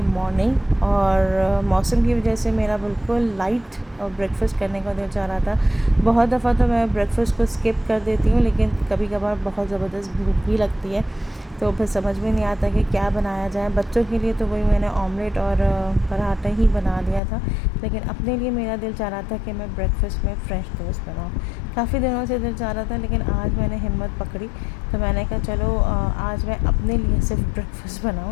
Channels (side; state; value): right; drops out; at 17.2 s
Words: मॉर्निंग, और मौसम की वजह से मेरा बिल्कुल लाइट ब्रेकफ़ास्ट करने का दिल चाह रहा था। बहुत दफ़ा तो मैं ब्रेकफ़ास्ट को स्किप कर देती हूँ, लेकिन कभी कभार बहुत ज़बरदस्त भूख भी लगती है, तो फिर समझ में नहीं आता कि क्या बनाया जाए। बच्चों के लिए तो वही मैंने ऑमलेट और पराठा ही बना लिया था, लेकिन अपने लिए मेरा दिल चाह रहा था कि मैं ब्रेकफ़ास्ट में फ्रेंच टोस्ट बनाऊँ। काफ़ी दिनों से दिल चाह रहा था, लेकिन आज मैंने हिम्मत पकड़ी, तो मैंने कहा चलो आज मैं अपने लिए सिर्फ ब्रेकफ़ास्ट